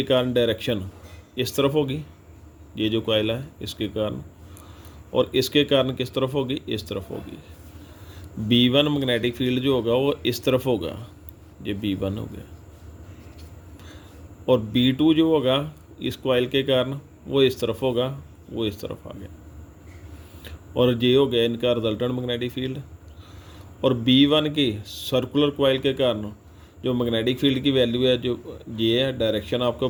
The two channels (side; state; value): both; identical; correlation 1.00